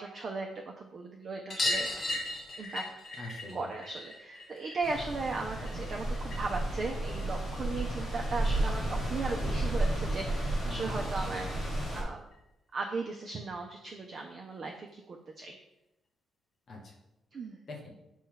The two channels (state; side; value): normal; both; correlation 0.84